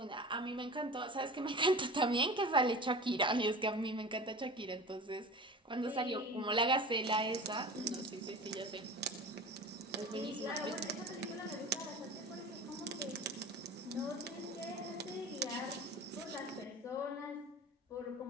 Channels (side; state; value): both; normal; correlation 0.35